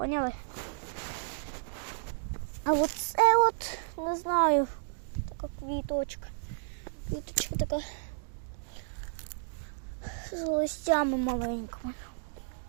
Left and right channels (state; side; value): silent; left; digital silence